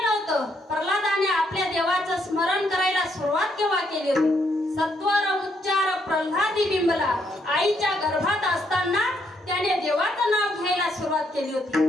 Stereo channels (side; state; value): both; normal; correlation 0.74